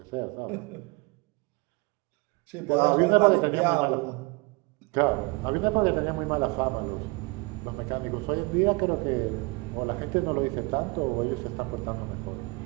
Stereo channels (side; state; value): left; quieter; 26.7 dB